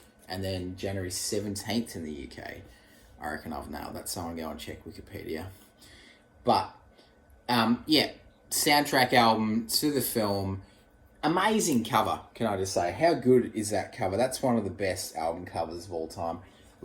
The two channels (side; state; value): both; identical; correlation 1.00